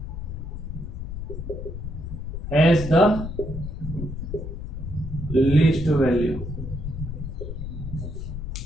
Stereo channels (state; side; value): noise; left; rumble, 6 dB below the sound